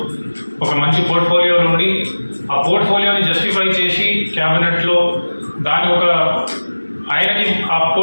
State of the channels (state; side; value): inverted; both; correlation -1.00